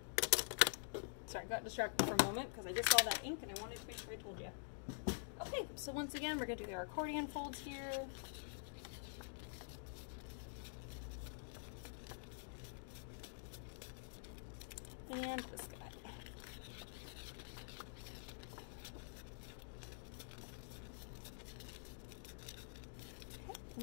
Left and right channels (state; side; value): silent; right; digital silence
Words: Sorry, I got distracted for a moment because I just saw that ink and I wanted to make sure I told you. Okay, so once again, we're going to do our accordion folds here. And this guy. Okay, and